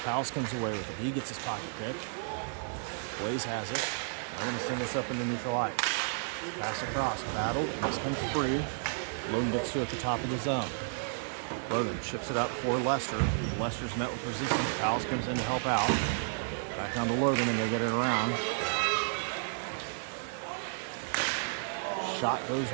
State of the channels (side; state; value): left; silent; digital silence